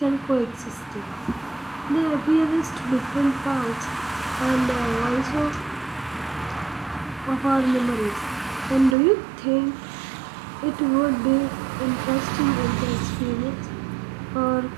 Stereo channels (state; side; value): drops out; left; at 9.0 s